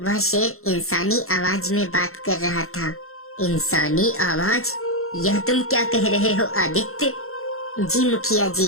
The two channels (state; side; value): late; right; 0.62 ms